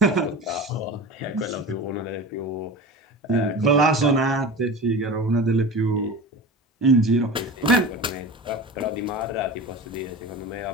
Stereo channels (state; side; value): normal; both; correlation 0.32